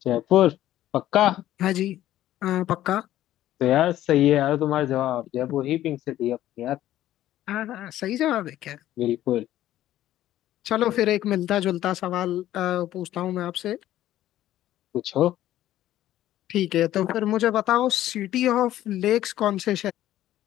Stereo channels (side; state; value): right; quieter; 13.4 dB